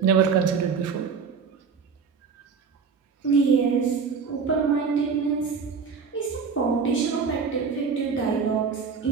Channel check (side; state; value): left; quieter; 5.6 dB